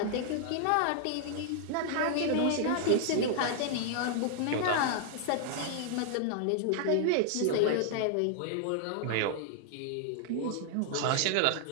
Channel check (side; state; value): both; different; correlation -0.01